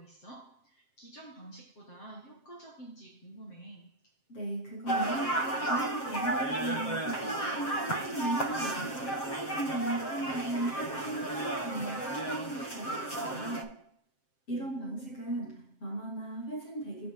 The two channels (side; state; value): right; late; 7.6 ms